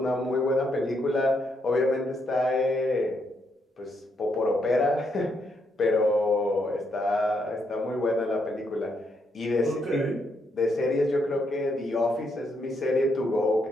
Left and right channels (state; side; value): normal; both; correlation 0.77